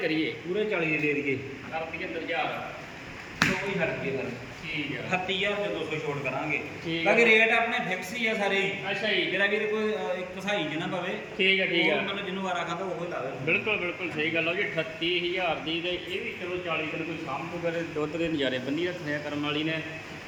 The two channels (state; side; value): identical; both; correlation 1.00